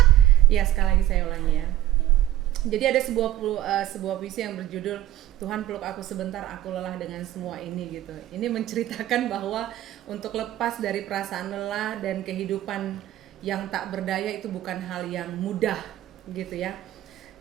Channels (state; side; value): quieter; left; 13.8 dB